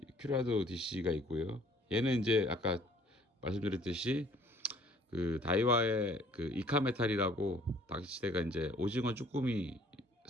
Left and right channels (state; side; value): normal; both; correlation 0.57